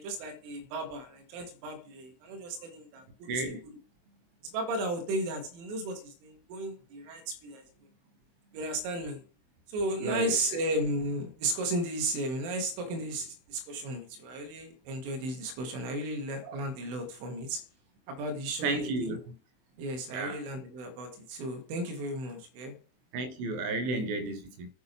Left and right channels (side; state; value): left; late; 23 ms